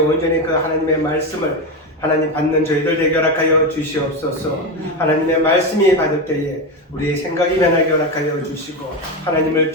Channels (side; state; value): both; normal; correlation 0.15